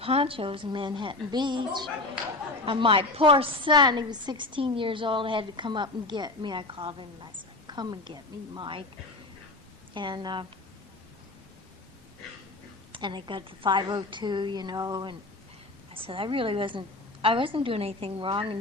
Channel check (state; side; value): quieter; right; 3.0 dB